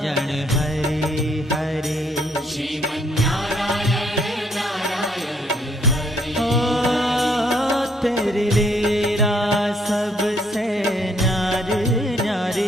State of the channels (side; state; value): both; normal; correlation 0.69